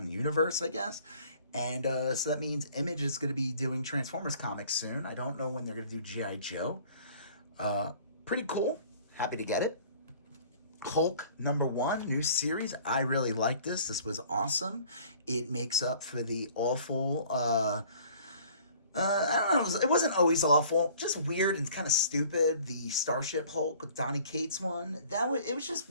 universe, I guess. And so that means Image is going to be doing Transformers comics soon. I don't know when they're going to do G.I. Joe. Pretty cool. Happy to get it. Hulk #1, new series. I really like this. This was awesome. It makes up for the awful... I don't know, it wasn't always awful, just weird and kind of stupid. The Starship Hulk with Donny Cates one, it just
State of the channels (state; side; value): inverted; both; correlation -0.52